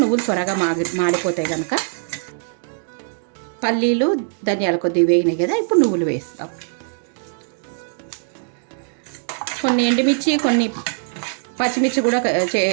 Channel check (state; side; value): silent; left; digital silence